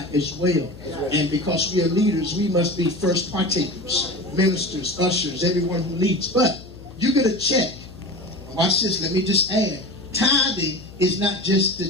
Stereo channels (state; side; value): noise; left; hum, 18 dB below the sound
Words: as well. And because we are leaders, we must be first partakers, ministers, ushers, everyone who leads. But you get a check. Watch this, let me just add. Tithing is not just